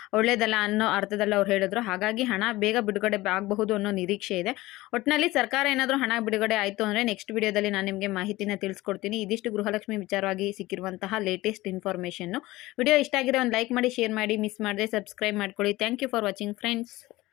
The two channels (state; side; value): quieter; right; 18.8 dB